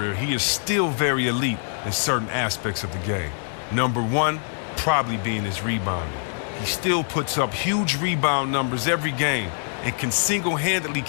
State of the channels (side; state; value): right; silent; digital silence